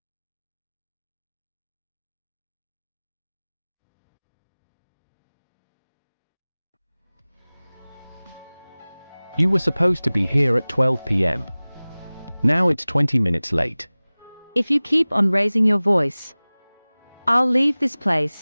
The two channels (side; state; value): both; inverted; correlation -1.00